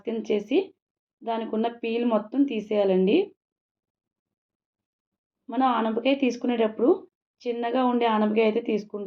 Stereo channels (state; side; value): identical; both; correlation 1.00